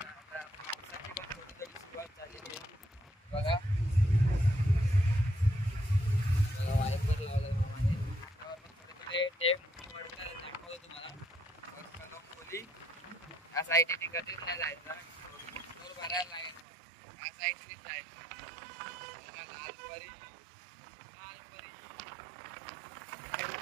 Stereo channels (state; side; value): drops out; left; at 16.7 s